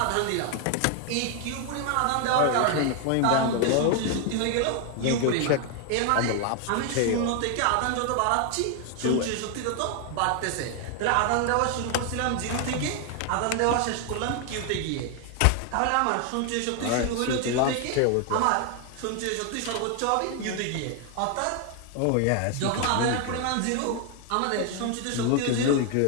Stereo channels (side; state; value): both; different; correlation 0.00